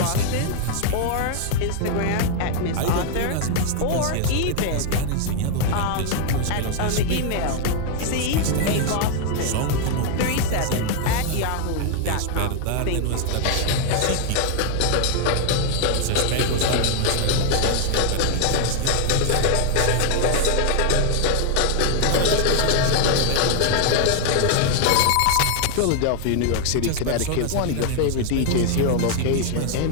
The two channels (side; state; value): both; different; correlation 0.00